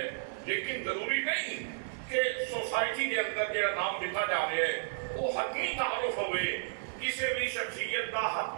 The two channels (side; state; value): left; silent; digital silence